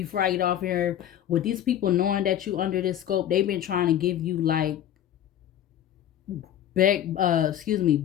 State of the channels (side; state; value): right; quieter; 11.0 dB